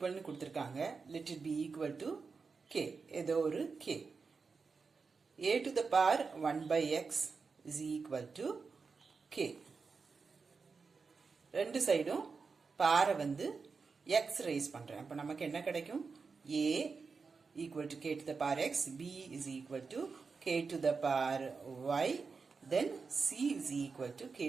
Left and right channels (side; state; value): left; quieter; 4.9 dB